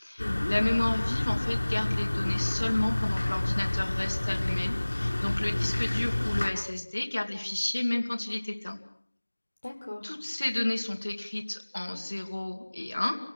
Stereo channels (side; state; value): both; inverted; correlation -1.00